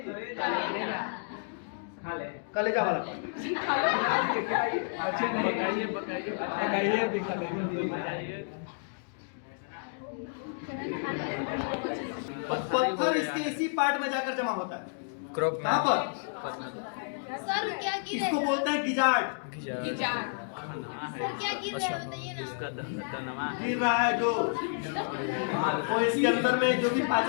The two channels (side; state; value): right; silent; digital silence